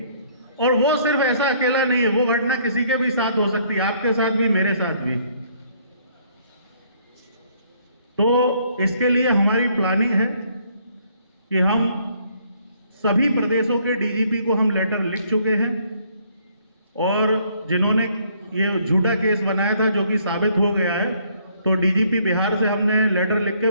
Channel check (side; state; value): both; inverted; correlation -0.65